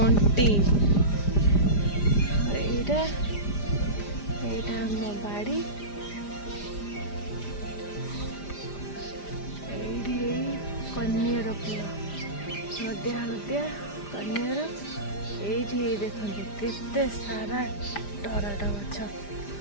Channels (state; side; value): late; right; 5.0 ms